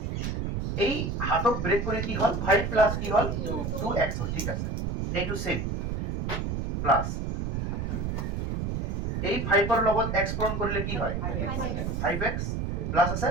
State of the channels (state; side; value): noise; right; rumble, 2 dB below the sound